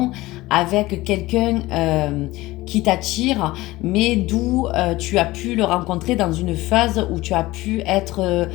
avec quelqu'un qui t'attire, mais d'où tu as pu le rencontrer dans une phase où tu as pu être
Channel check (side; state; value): right; quieter; 18.9 dB